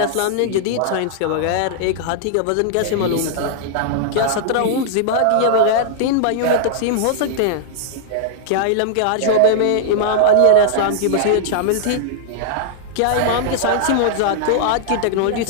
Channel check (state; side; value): different; both; correlation -0.01